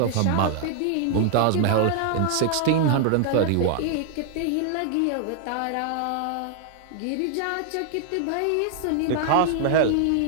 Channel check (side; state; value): both; different; correlation 0.00